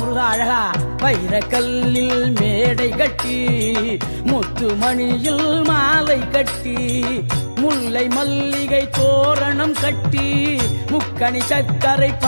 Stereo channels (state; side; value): inverted; both; correlation -1.00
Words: அழகா. வைரக்கல்லில் மேடை கட்டி, முத்துமணியில் மாலை கட்டி, முல்லை மல்லிகை தோரணம் கட்டி, முக்கணி சக்கரை